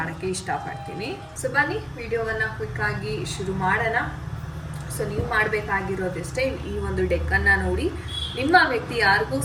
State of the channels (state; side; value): identical; both; correlation 1.00